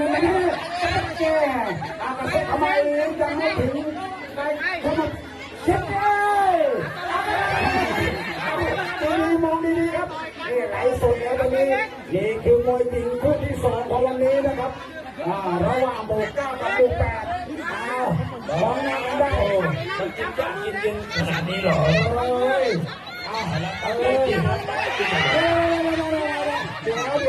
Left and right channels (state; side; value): identical; both; correlation 1.00